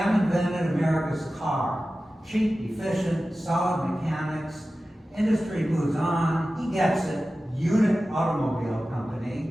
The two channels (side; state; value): both; normal; correlation 0.95